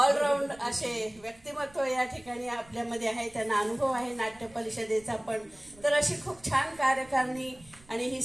असे व्यक्तिमत्व या ठिकाणी आपल्यामध्ये आहे. त्यांना अनुभव आहे नाट्य परिषदेचा पण. तर अशी खूप छान कार्यकारिणी आणि ही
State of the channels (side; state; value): right; noise; rumble, 26 dB below the sound